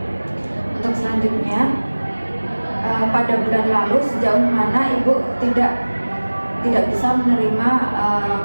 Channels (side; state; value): both; inverted; correlation -1.00